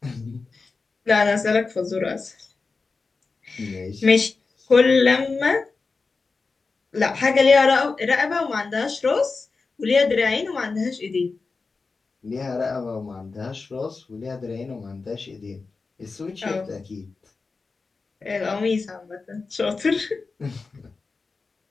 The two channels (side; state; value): right; quieter; 4.2 dB